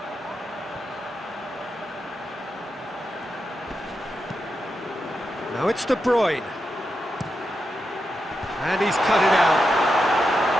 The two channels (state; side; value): normal; both; correlation 0.87